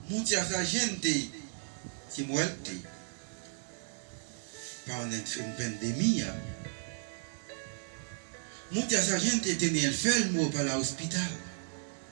Mucha gente se muere por una pandemia. Mucha gente tiene enfermo para el hospital.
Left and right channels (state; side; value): silent; left; digital silence